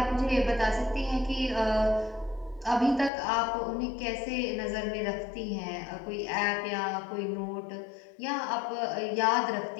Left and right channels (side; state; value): right; drops out; at 3.1 s